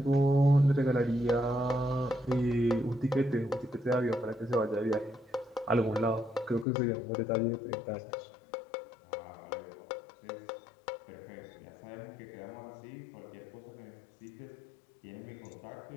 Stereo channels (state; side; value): drops out; right; at 6.7 s